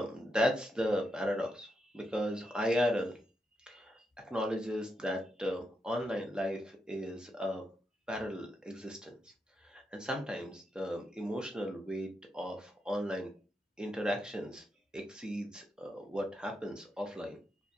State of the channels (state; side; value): normal; both; correlation 0.84